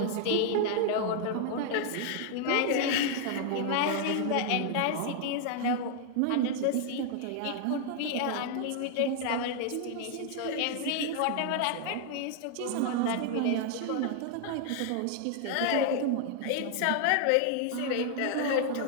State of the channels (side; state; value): both; different; correlation 0.00